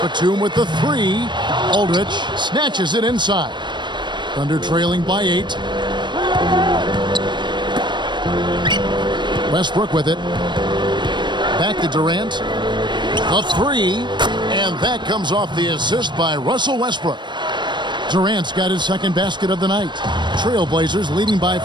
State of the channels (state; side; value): late; left; 0.22 ms